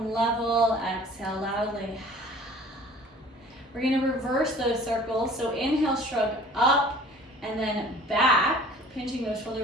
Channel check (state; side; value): normal; both; correlation 0.48